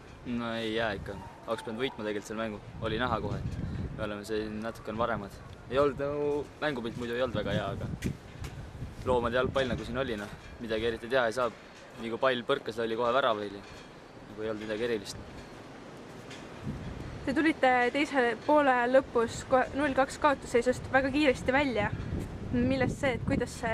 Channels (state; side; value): identical; both; correlation 1.00